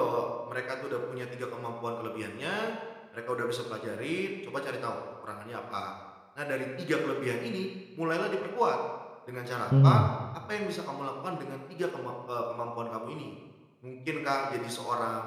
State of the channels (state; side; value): identical; both; correlation 1.00